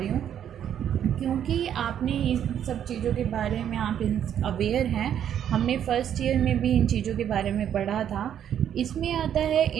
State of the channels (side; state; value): left; quieter; 9.7 dB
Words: हूँ, क्योंकि आपने इन सब चीज़ों के बारे में आप अवेयर हैं। हमने फर्स्ट ईयर में भी इन चीज़ों के बारे में पढ़ा था। इसमें आता है